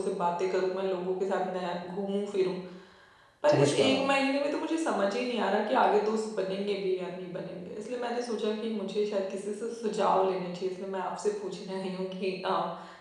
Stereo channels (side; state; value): both; identical; correlation 1.00